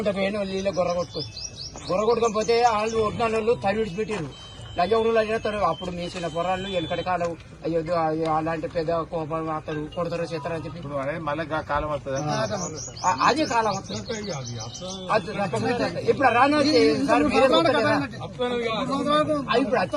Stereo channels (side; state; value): both; identical; correlation 1.00